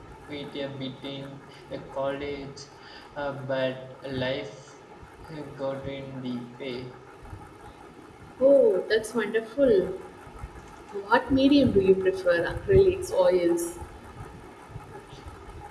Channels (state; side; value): identical; both; correlation 1.00